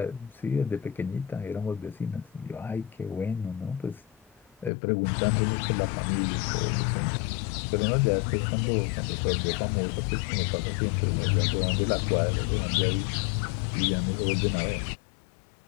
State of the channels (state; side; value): drops out; right; at 4.7 s